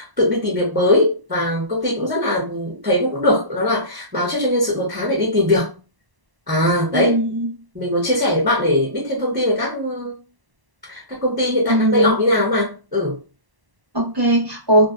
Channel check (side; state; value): left; late; 1.0 ms